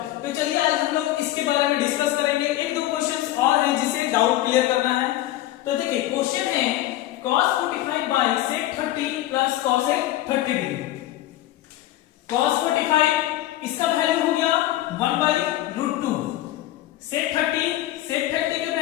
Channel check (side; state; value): right; quieter; 14.8 dB